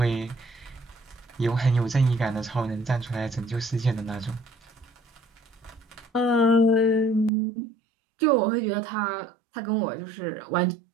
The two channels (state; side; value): drops out; left; at 7.3 s